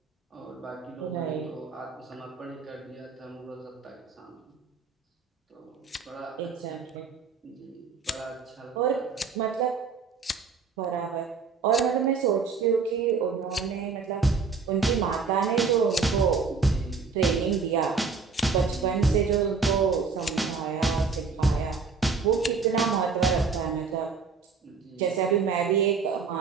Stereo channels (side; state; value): left; quieter; 5.1 dB